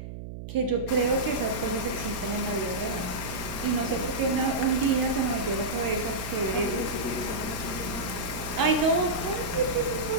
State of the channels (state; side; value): noise; right; hum, 10 dB below the sound